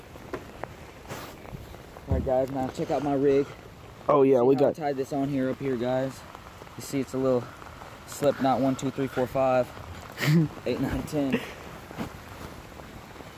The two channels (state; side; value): identical; both; correlation 1.00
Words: Alright guys, now check out my rig. Oh yeah, we got... I tied this on here, up here, guys. You see it's a little slip knot, 1, 2, 3, 4, 5, 8, 9, 10. It's